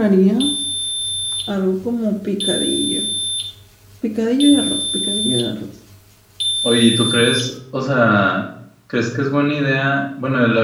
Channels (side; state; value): both; identical; correlation 1.00